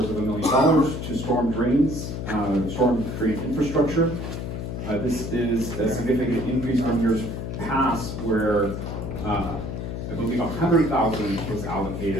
to storm drains, storm drain infrastructure. This is a significant increase from years past where I believe $100,000 was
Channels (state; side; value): noise; left; hum, 5 dB below the sound